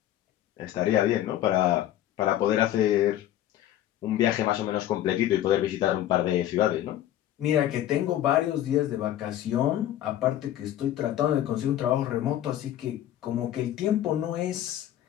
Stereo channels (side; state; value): right; quieter; 12.5 dB